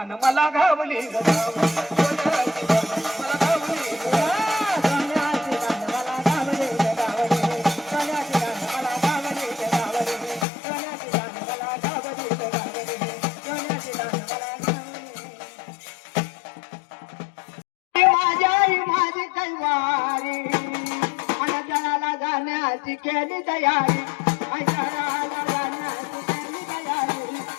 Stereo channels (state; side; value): drops out; right; at 10.5 s